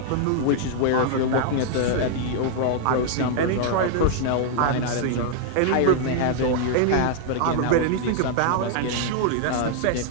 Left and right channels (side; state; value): both; different; correlation -0.01